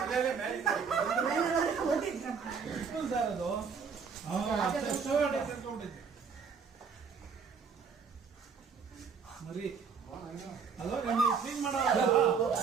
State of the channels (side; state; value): left; quieter; 5.9 dB